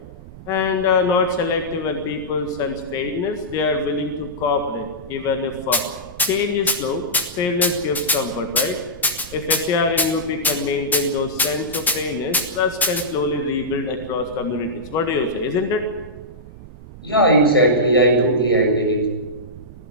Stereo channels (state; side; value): noise; right; rumble, 17 dB below the sound